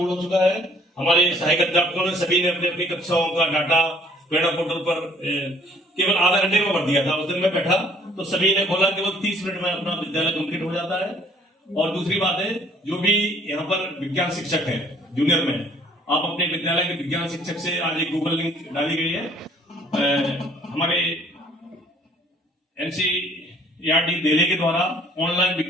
हो चुका है। हमारे सहायक अध्यापकों ने सभी ने अपनी अपनी कक्षाओं का डाटा प्रेरणा पोर्टल पर केवल आधा घंटे में भर दिया था। उस दिन मैं बैठा तो सभी ने खोला, केवल 30 मिनट में अपना विद्यालय कंप्लीट हो जाता है। और दूसरी बात है, जो भी यहाँ पर विज्ञान शिक्षक है जूनियर में, आप अपने विद्यालय के विज्ञान शिक्षक से, आज एक गूगल लिंक डाली गई है, हमारे एनसीईआरटी दिल्ली के द्वारा ऑनलाइन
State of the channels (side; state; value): both; normal; correlation 0.59